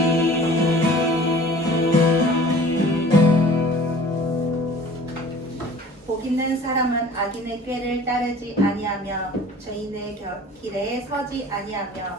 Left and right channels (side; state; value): both; normal; correlation 0.46